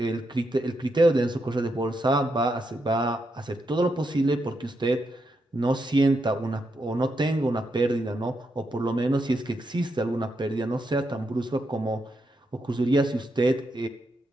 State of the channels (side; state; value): both; normal; correlation 0.82